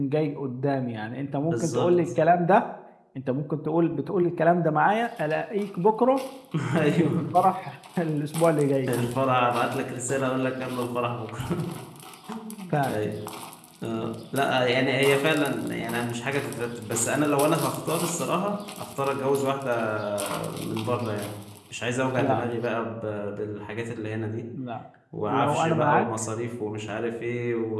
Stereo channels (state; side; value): identical; both; correlation 1.00